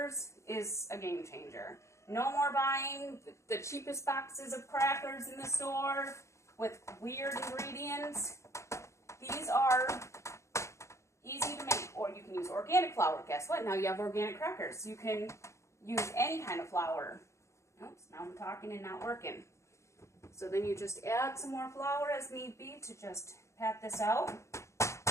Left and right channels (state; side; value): late; right; 0.14 ms